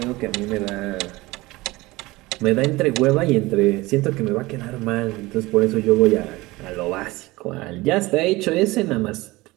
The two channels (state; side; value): quieter; left; 20.7 dB